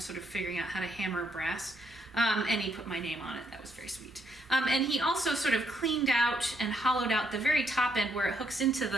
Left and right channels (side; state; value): both; normal; correlation 0.74